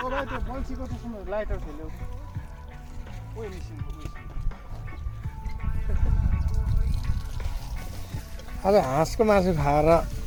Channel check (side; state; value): both; identical; correlation 1.00